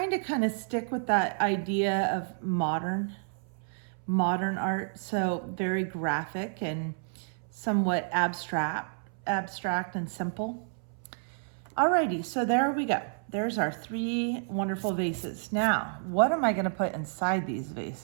to kind of stick with that idea of modern art, so very graphic and somewhat abstract and simple. Alrighty, so there we go. There's our 3 wonderful vases. Now, what am I gonna put inside these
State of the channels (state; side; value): silent; left; 58 dB below the other